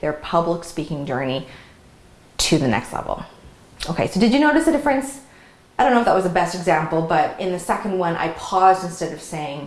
their public speaking journey to the next level. Okay, so did you notice a difference? I don't know if that was the best example, but in the second one, I paused instead of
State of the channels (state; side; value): identical; both; correlation 1.00